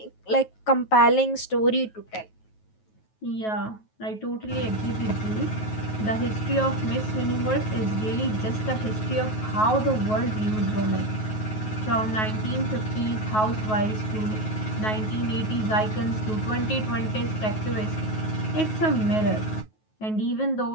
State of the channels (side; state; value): right; late; 9.3 ms